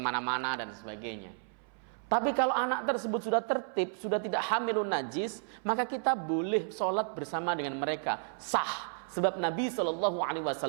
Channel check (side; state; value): left; silent; 56 dB below the other